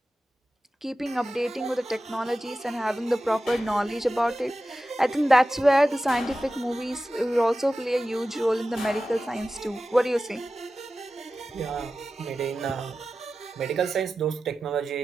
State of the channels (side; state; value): both; normal; correlation 0.94